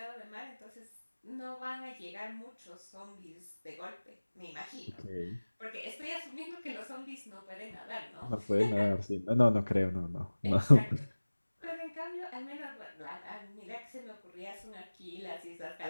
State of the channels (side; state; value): both; inverted; correlation -1.00